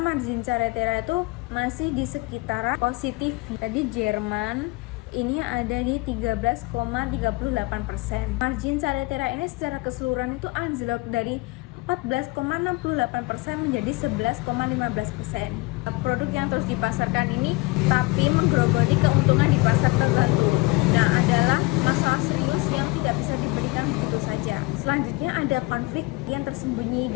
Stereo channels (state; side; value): quieter; right; 23.8 dB